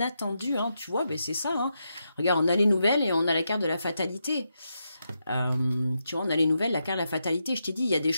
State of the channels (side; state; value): both; inverted; correlation -0.84